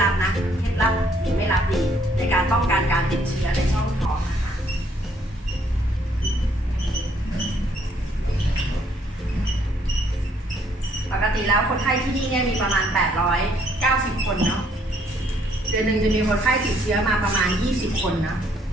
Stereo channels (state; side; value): normal; both; correlation 0.67